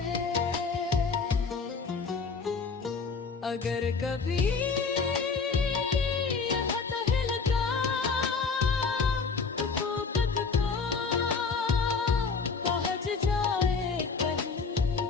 है। अगर कभी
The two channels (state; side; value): quieter; right; 4.9 dB